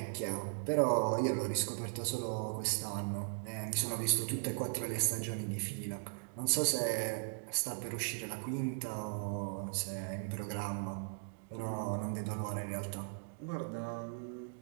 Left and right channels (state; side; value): silent; left; digital silence